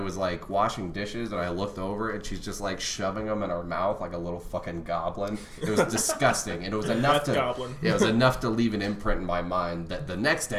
like washing dishes, and I looked over, and she's just like shoving them in her mouth like a little fucking goblin. It was disgusting, and it was enough That's goblin. it was enough to leave an imprint in my mind that the next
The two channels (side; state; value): both; identical; correlation 1.00